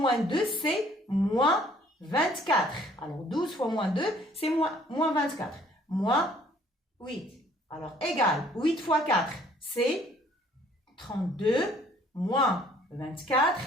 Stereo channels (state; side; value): normal; both; correlation 0.59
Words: 2 c'est moins 24. Alors 12 fois moins 2 c'est moins 24. Moins 8. Alors égal, 8 fois 4 c'est 32 moins 24